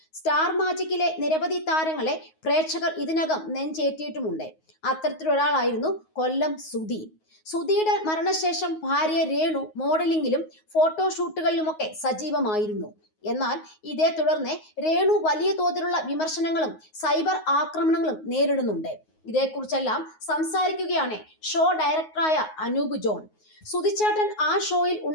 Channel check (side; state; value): right; late; 9.5 ms